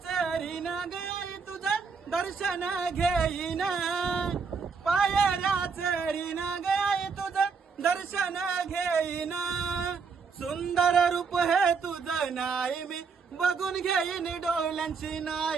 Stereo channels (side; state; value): left; quieter; 5.4 dB